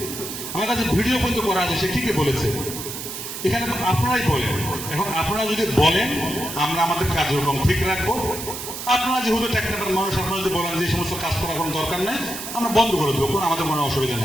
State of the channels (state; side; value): noise; right; hiss, 8 dB below the sound